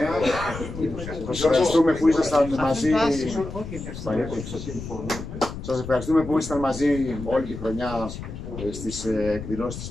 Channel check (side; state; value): left; noise; rumble, 10 dB below the sound